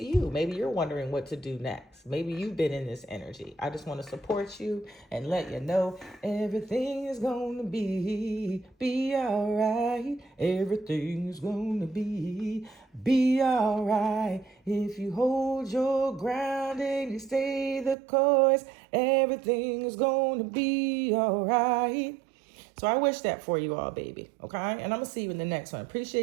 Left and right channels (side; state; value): left; drops out; at 17.9 s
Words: you. Maybe you're wondering what to do next. Maybe you've been in this energy. I just want to support you and let you know everything is going to be all right. Everything is going to be all right. If you hold your ground and you stay the course, everything is going to be all right. So I wish that for you all, baby. Okay? And I'm going to see you in the next one.